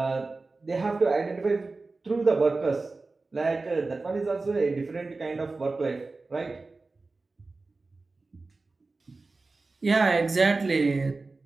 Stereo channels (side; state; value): left; quieter; 3.6 dB